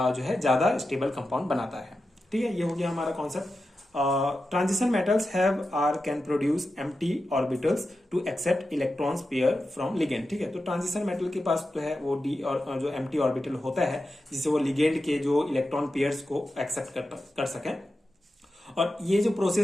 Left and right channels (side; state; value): both; normal; correlation 0.91